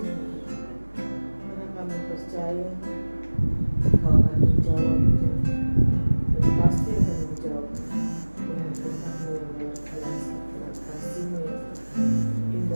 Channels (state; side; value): inverted; both; correlation -1.00